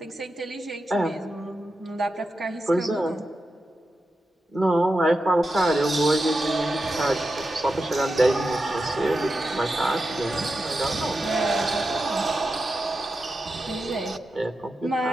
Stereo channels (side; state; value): both; normal; correlation 0.90